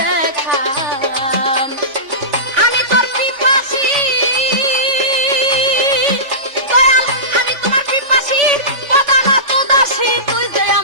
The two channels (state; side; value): late; left; 3.5 ms